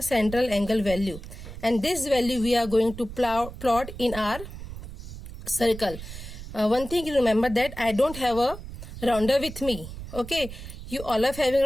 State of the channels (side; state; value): right; noise; rumble, 11 dB below the sound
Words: central angle value. And this value we are going to plot in our circle. One thing you remember, that I don't have a rounder with me. Okay, you all are having